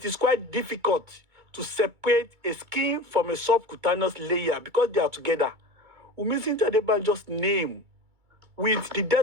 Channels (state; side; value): late; left; 2.3 ms